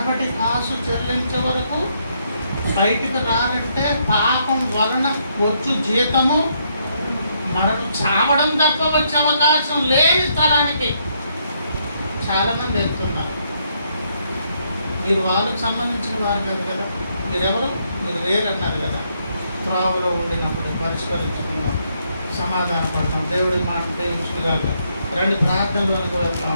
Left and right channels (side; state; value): both; inverted; correlation -0.74